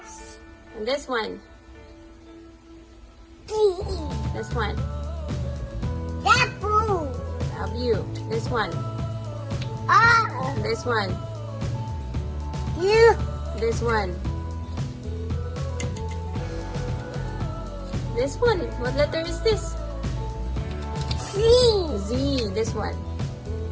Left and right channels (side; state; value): both; identical; correlation 1.00